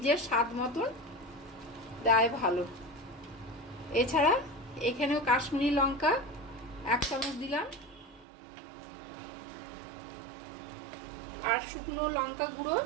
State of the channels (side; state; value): left; drops out; at 8.2 s